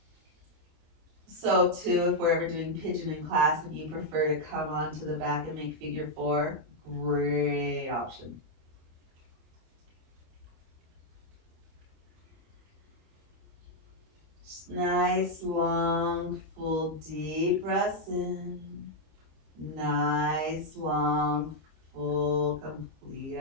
So too, if we're ever doing pigeon in class, if you prefer to come onto the back and make figure 4, great option. Just nice, long, full, deep breaths in. Nice, long, full, complete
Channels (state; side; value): late; left; 25 ms